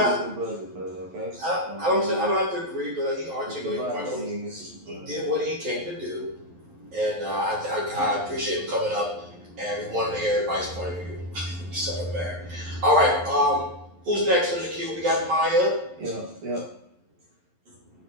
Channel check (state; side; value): late; left; 11 ms